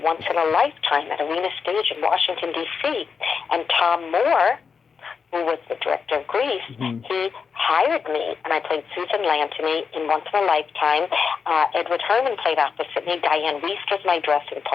Once in a Lifetime at Arena Stage in Washington, D.C. And Tom Moore, who was the director of Grease, he hired me, and I played Susan Lantony in Once in a Lifetime. Edward Herrmann played opposite me. Diane Wiest was my dressing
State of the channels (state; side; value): quieter; right; 5.8 dB